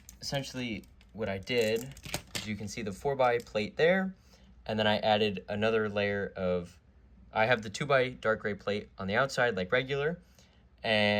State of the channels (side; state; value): both; identical; correlation 1.00